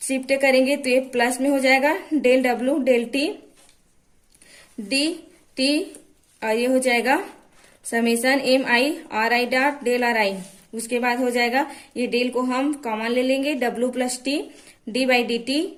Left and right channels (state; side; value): identical; both; correlation 1.00